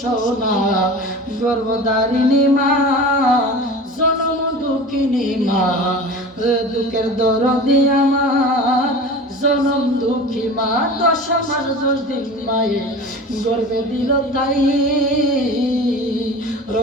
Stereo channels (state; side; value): normal; both; correlation 0.36